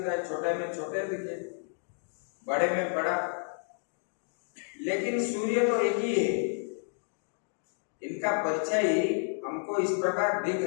है, छोटे में छोटे दिखे, बड़े में बड़ा, लेकिन सूर्य तो एक ही है। इनका परछाई हमको इस प्रकार दिख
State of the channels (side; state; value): right; silent; 57 dB below the other